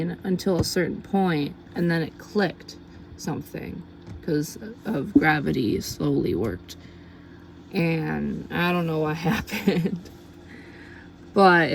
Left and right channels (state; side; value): identical; both; correlation 1.00